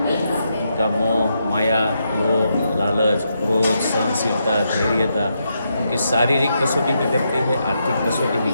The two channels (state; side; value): inverted; both; correlation -0.81